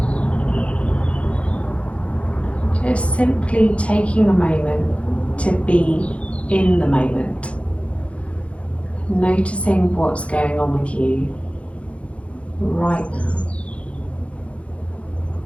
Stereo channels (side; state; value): right; late; 0.062 ms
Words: Just simply taking a moment to be in the moment. Noticing what's going on with you right now.